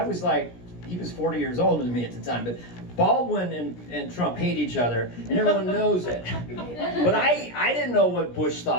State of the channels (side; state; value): right; late; 17 ms